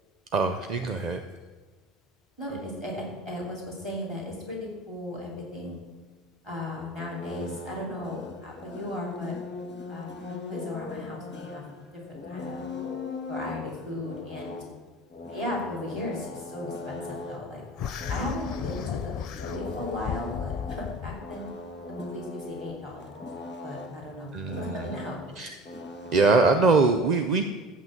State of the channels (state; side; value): normal; both; correlation 0.40